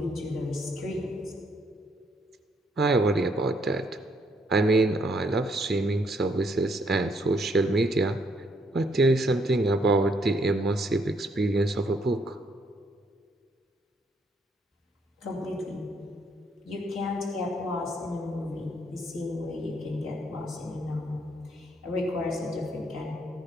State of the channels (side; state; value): both; normal; correlation 0.70